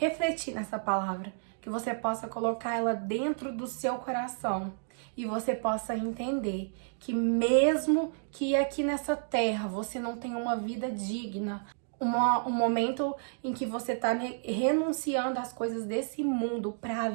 nessa palavra, que você possa colocar ela dentro do seu coração e você possa entender que mesmo que aqui nessa terra você não tenha uma vida digna, um momento em que você está renunciando às coisas desse mundo para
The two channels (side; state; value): left; silent; digital silence